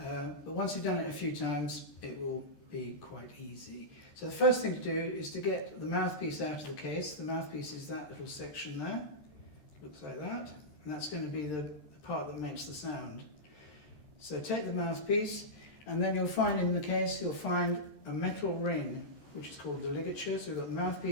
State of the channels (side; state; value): right; late; 13 ms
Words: once you've done it a few times, it will be quite easy. So the first thing to do is to get the mouthpiece out of the case. The mouthpiece is that little section there. Looks like that. And that's going to be the part that makes the sound. So take the mouthpiece, and then you'll find in the case, you'll find a metal ring, which is called the ligature. So we've got the